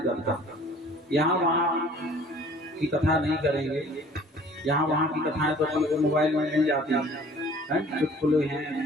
कथा। यहाँ वहाँ की कथा नहीं करेंगे। यहाँ वहाँ की कथाएं तो अपन को मोबाइल में मिल जाती हैं, चुटकुले हैं,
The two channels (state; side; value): normal; both; correlation 0.51